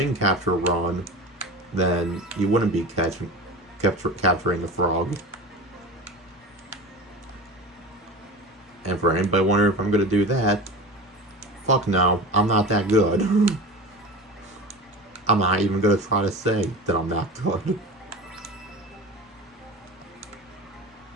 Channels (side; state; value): both; normal; correlation 0.31